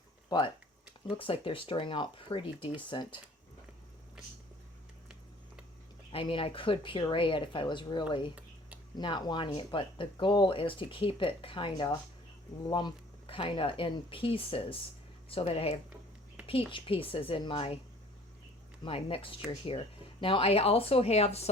But looks like they're stirring out pretty decent. I mean, I could puree it if I was really not wanting it, but the goal is to keep it kind of in pieces, so that I have peach pieces in my mixture here. Now I also have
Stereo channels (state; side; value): normal; both; correlation 0.52